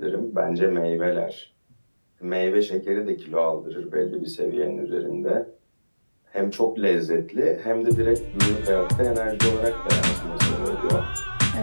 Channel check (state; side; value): inverted; both; correlation -1.00